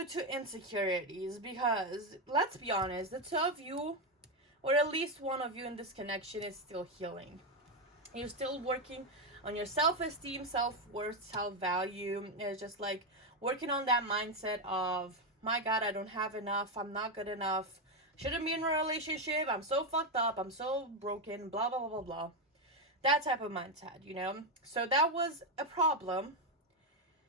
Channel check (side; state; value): both; normal; correlation 0.07